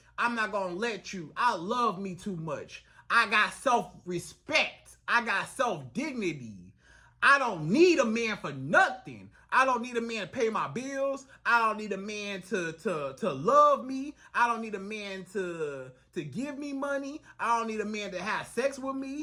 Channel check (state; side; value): identical; both; correlation 1.00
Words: I'm not gonna let you. I love me too much. I got self-respect. I got self-dignity. I don't need a man for nothing. I don't need a man to pay my bills. I don't need a man to love me. I don't need a man to give me money. I don't need a man to have sex with